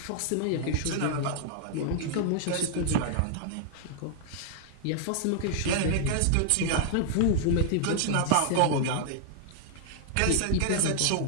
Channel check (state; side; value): different; both; correlation 0.00